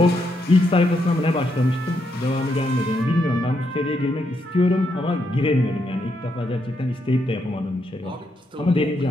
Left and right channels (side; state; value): both; normal; correlation 0.79